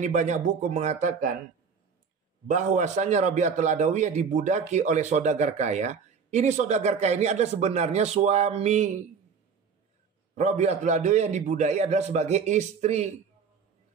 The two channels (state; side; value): quieter; left; 6.0 dB